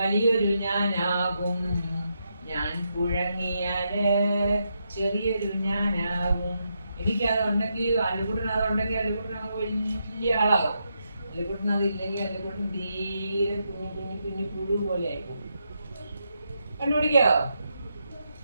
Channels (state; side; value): inverted; both; correlation -0.82